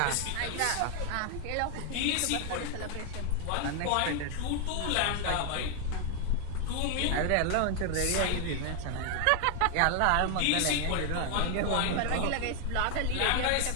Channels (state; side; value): different; both; correlation 0.00